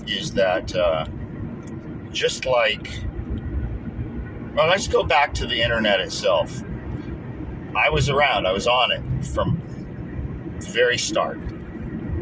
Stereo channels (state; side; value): identical; both; correlation 1.00